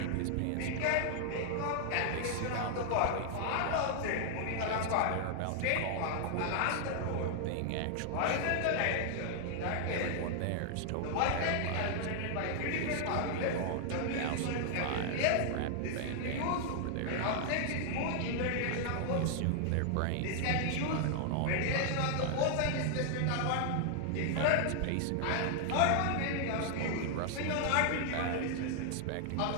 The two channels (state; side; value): different; both; correlation 0.00